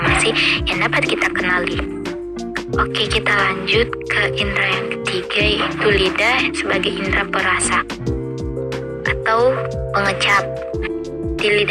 yang dapat kita kenali. Oke, kita lanjut ke indera yang ketiga, yaitu lidah sebagai indera perasa atau pengecap. Di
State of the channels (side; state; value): both; identical; correlation 1.00